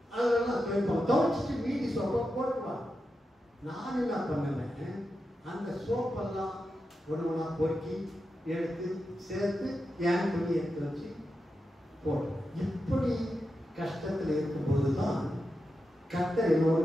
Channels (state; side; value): normal; both; correlation 0.89